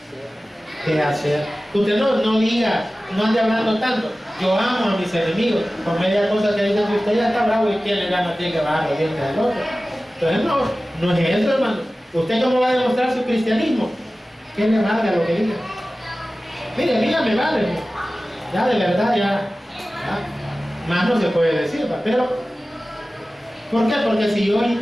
De hacer. Usted no diga, no ande hablando tanto. Yo amo a mis enemigos. Con media cosa que dicen que usted ya está bravo y quién le gana, tiene que bajar los dientes al otro. Entonces no es eso, hermano. ¿Usted cómo va a demostrar su cristianismo? ¿Qué le valga lo que diga? Mire, a mí ya me vale. Ya de verdad, ya más no se puede decir, ¿va? Pero ¿por qué? Porque si yo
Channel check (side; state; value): both; normal; correlation 0.96